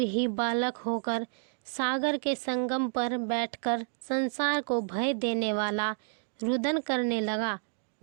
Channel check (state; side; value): silent; left; 58 dB below the other